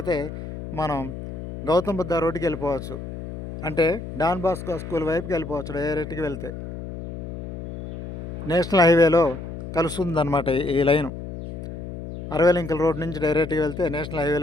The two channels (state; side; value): noise; left; hum, 9 dB below the sound